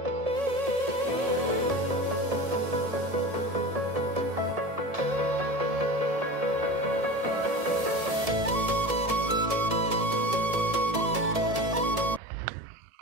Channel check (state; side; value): late; left; 1.7 ms